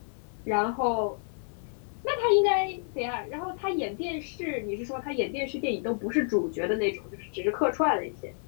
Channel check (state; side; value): silent; right; digital silence